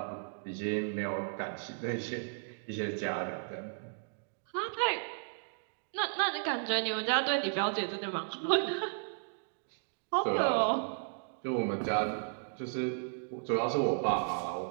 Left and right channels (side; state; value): left; silent; digital silence